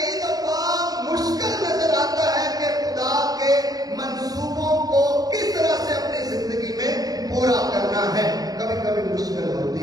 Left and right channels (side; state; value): left; late; 0.18 ms